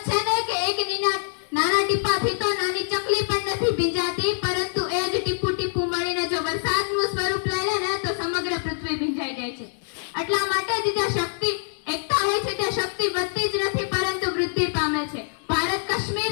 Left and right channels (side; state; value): right; silent; 60 dB below the other